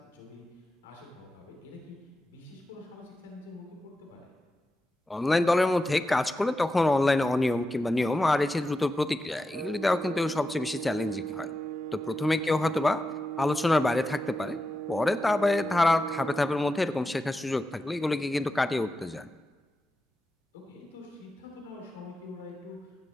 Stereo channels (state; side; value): normal; both; correlation 0.90